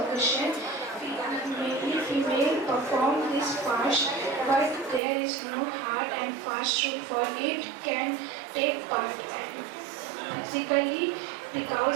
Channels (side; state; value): left; drops out; at 5.0 s